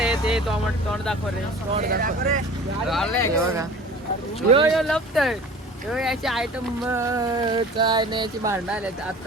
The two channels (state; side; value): normal; both; correlation 0.42